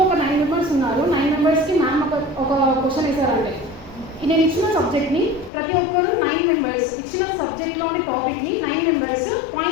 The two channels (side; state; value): right; drops out; at 5.5 s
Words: ఒక 9 members ఉన్నారు. 9 మెంబర్స్కి ma'am ఒక question వేసారంటే నేను ఇచ్చిన సబ్జెక్ట్ని ప్రతి ఒక్కరు 9 మెంబర్స్ ఇచ్చిన సబ్జెక్ట్లోని టాపిక్ని 9 మెంబర్స్